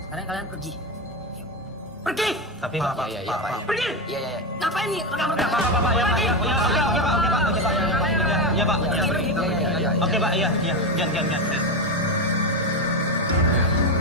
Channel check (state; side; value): normal; both; correlation 0.12